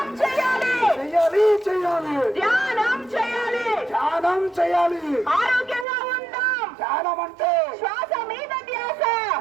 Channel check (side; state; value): left; drops out; at 5.9 s